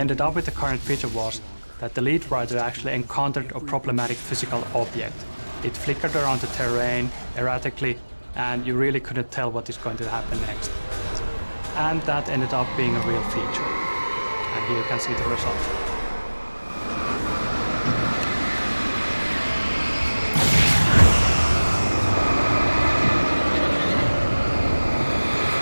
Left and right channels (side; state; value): both; inverted; correlation -1.00